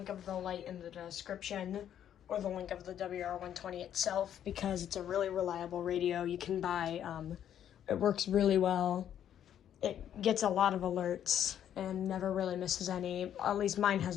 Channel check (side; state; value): right; quieter; 10.1 dB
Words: of the light in the description or the link of the WR120 itself because it's a really reliable radio you can buy. It works really well. It gets a lot of alerts and never really misses any. At least mine